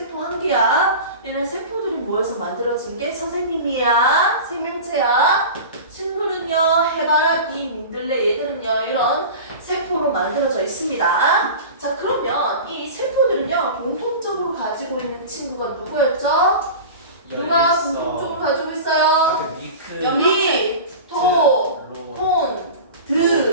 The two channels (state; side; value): inverted; both; correlation -0.33